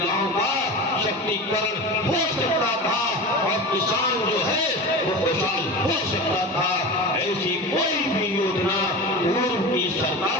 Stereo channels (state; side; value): normal; both; correlation 0.29